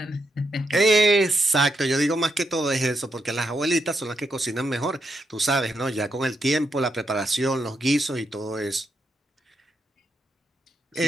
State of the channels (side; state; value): both; normal; correlation 0.82